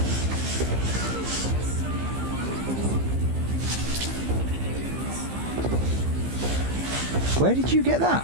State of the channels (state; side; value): late; left; 15 ms